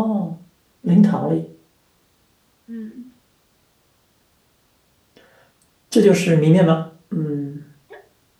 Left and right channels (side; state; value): both; identical; correlation 1.00